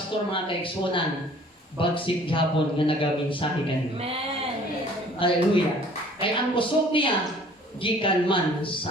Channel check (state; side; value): normal; both; correlation 0.53